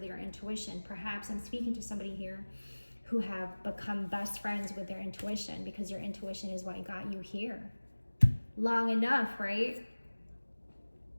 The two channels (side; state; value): both; inverted; correlation -1.00